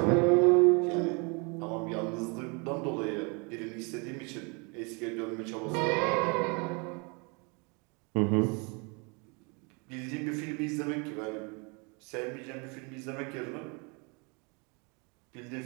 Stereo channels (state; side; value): quieter; left; 31.9 dB